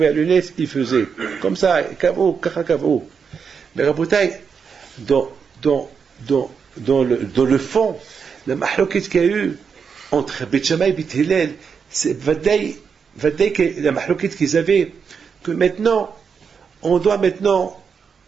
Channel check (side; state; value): left; quieter; 6.2 dB